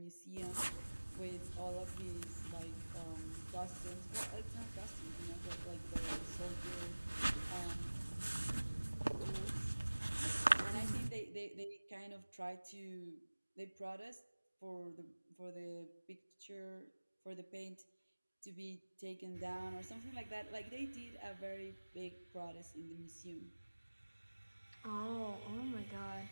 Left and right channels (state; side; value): inverted; both; correlation -1.00